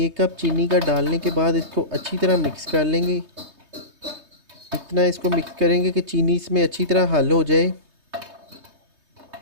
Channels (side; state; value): left; late; 3.2 ms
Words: कप चीनी का डालने के बाद इसको अच्छी तरह मिक्स कर लेंगे। इतना इसको मिक्स करेंगे कि चीनी इसमें अच्छी तरह हल हो जाए।